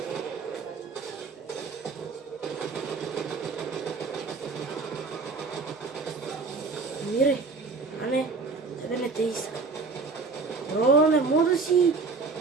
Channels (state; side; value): quieter; left; 4.4 dB